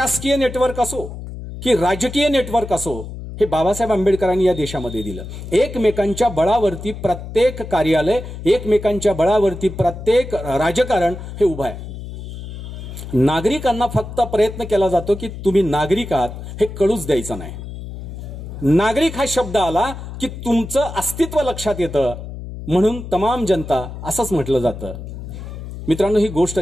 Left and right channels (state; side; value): noise; left; hum, 10 dB below the sound